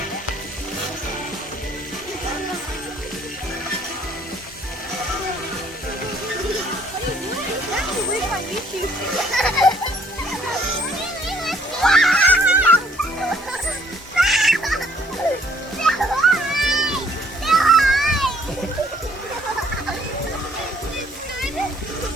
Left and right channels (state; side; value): normal; both; correlation 0.63